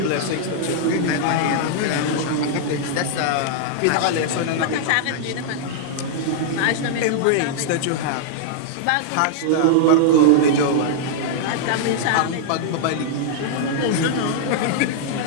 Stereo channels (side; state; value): both; different; correlation -0.01